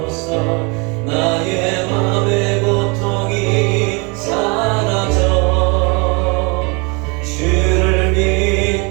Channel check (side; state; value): left; quieter; 30.6 dB